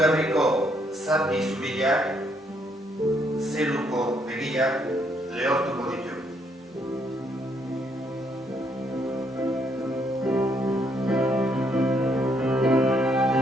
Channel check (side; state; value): both; normal; correlation 0.72